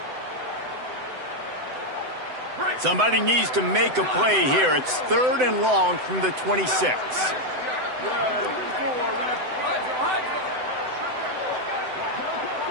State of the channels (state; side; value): late; left; 7.9 ms